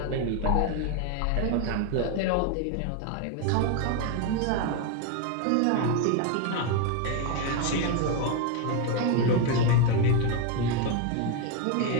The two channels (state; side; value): different; both; correlation 0.02